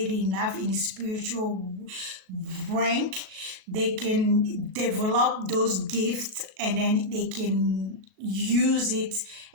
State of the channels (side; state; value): left; late; 37 ms